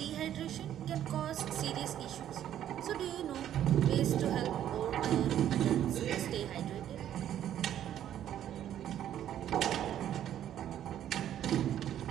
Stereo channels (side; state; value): left; quieter; 10.9 dB